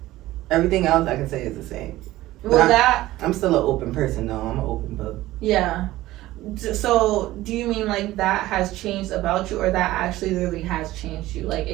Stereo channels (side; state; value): left; quieter; 16.5 dB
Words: Everything else I can say is the same. Well, I'm still an open person, though. I'm an open book. Yeah. So do you mean like that has changed about you, or that actually literally has changed you, like